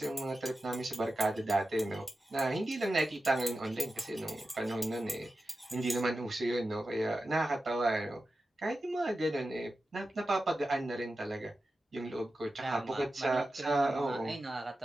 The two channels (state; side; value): normal; both; correlation 0.93